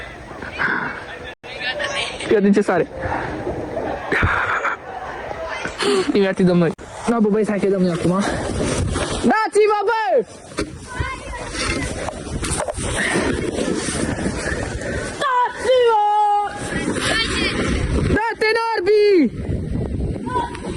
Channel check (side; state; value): both; identical; correlation 1.00